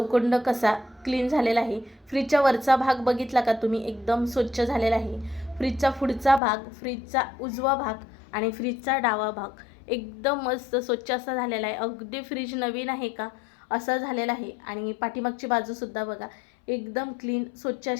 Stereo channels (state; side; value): drops out; right; at 6.4 s